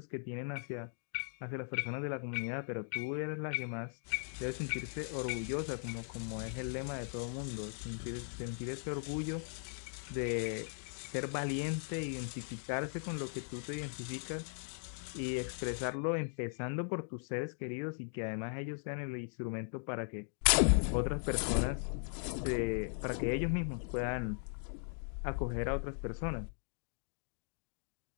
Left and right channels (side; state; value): right; silent; digital silence